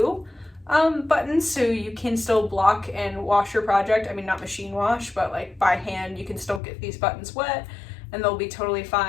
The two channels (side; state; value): right; drops out; at 6.6 s